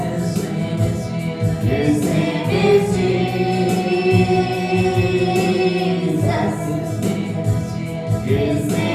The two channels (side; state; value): both; identical; correlation 1.00